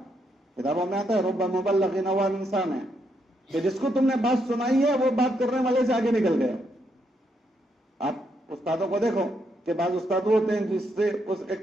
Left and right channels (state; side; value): normal; both; correlation 0.78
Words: کتابوں میں آتا ہے رب مبلغ نوال انسان ہے کہ جس کو تم نے بات سنائی ہے وہ بات کرنے والے سے آگے نکل گیا. آپ استادوں کو دیکھو کہ بعض استاد ہوتے ہیں جس سے